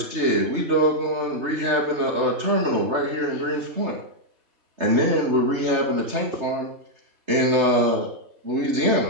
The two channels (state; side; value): late; left; 3.3 ms